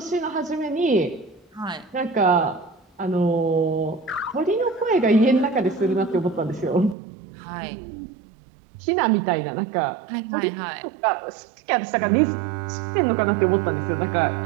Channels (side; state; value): left; drops out; at 7.0 s